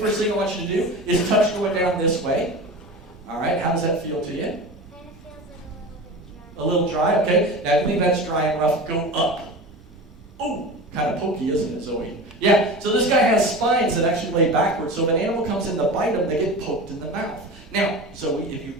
thing I want you to do is touch going down this way. All right, how does that feel to you? Kind of feels like A little dry, okay. Now, I think that's dry and rough. Go up. Oh, kind of pokey, isn't it, Zoe? Yeah, so this guy has spines that actually lay backwards, so if an animal comes in to bite them, they get poked in the mouth. Now, Zoe, if you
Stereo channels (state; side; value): normal; both; correlation 0.31